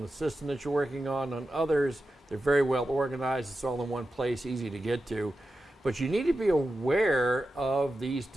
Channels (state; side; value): normal; both; correlation 0.91